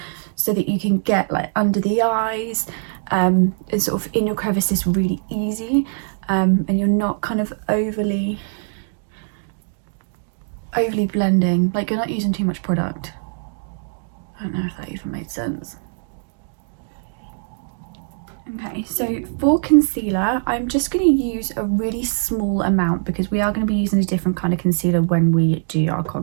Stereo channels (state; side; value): silent; left; digital silence